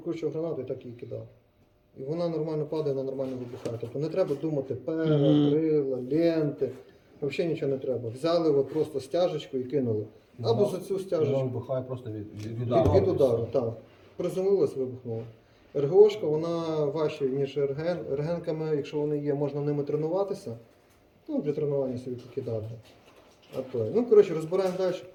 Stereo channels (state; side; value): identical; both; correlation 1.00